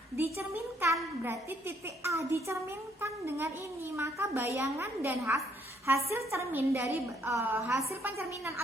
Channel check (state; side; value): normal; both; correlation 0.69